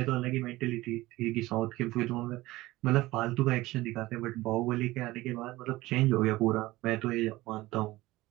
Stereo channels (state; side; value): quieter; left; 18.6 dB